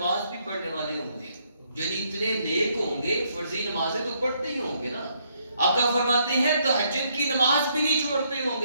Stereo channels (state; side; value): inverted; both; correlation -0.72